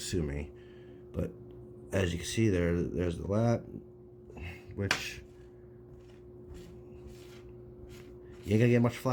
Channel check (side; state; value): both; identical; correlation 1.00